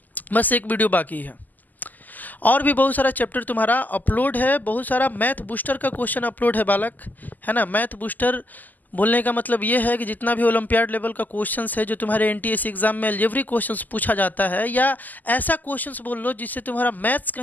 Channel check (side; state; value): right; late; 0.083 ms